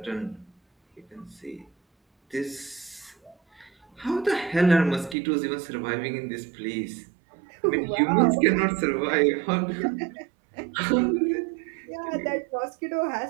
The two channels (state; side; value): drops out; left; at 5.2 s